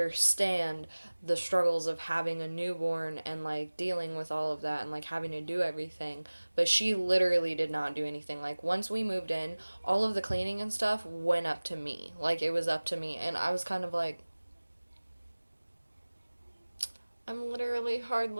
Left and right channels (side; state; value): both; inverted; correlation -1.00